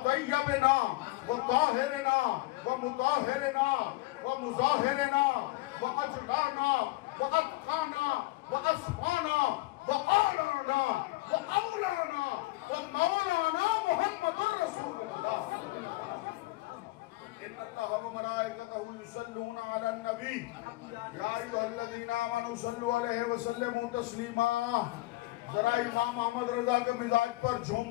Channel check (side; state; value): right; quieter; 19.9 dB